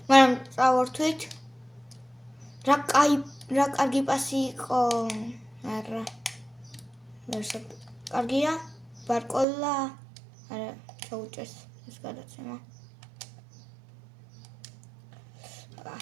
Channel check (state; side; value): drops out; left; at 9.5 s